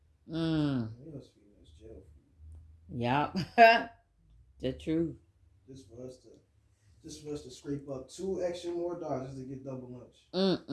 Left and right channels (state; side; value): identical; both; correlation 1.00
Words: It was feeding us jail food. Yep. The truth. Just for us to scrape up $2 extra more dollars just to get double lunch.